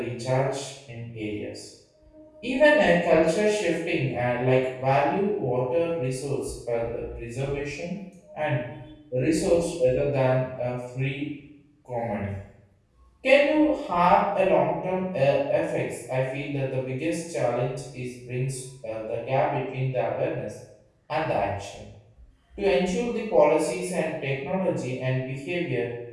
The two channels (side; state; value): both; identical; correlation 1.00